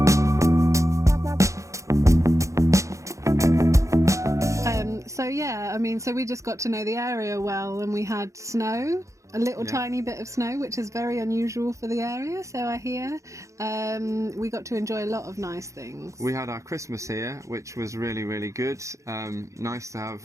So we just got to know the area well, and we had snow. A little tiny bit of snow, which is very unusual for the area, so I hear. We got to enjoy a lot of nice things. We had our Christmas here, which was really, really good. Nice to have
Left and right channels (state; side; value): late; left; 0.15 ms